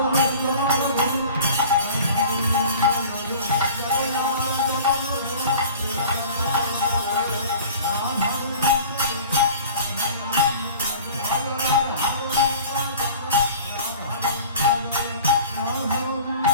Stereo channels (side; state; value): both; inverted; correlation -0.42